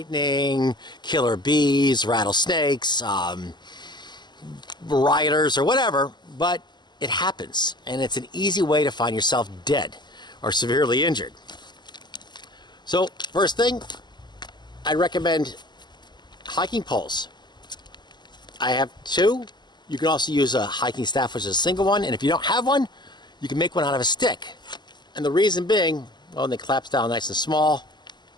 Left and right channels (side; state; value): right; late; 0.21 ms